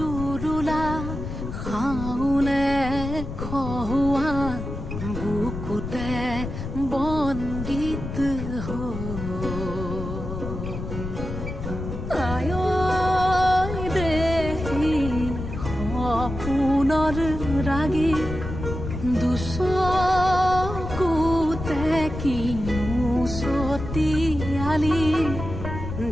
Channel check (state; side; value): noise; left; rumble, 7 dB below the sound